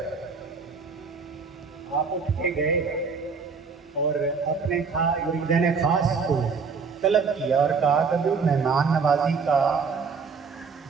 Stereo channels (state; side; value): quieter; left; 5.2 dB